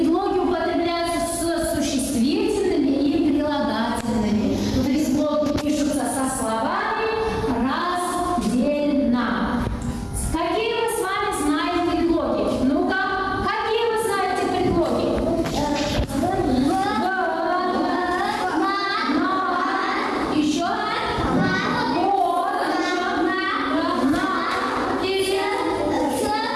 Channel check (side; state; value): both; identical; correlation 1.00